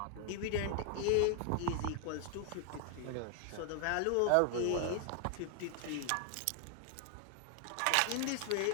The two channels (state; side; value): different; both; correlation 0.00